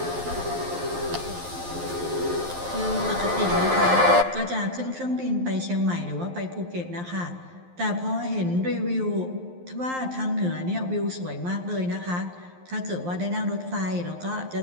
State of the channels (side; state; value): left; late; 11 ms